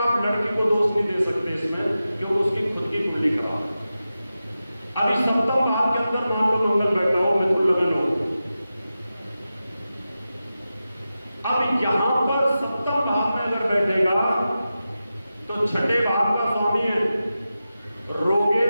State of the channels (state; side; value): inverted; both; correlation -0.92